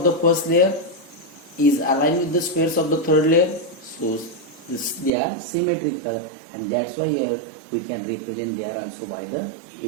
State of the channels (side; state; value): left; drops out; at 5.1 s